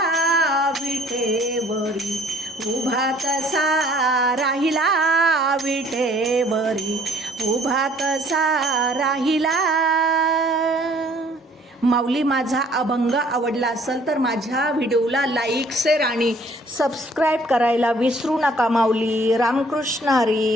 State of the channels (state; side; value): normal; both; correlation 0.58